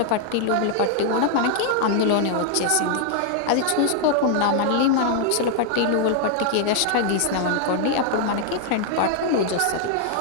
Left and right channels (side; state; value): both; different; correlation 0.00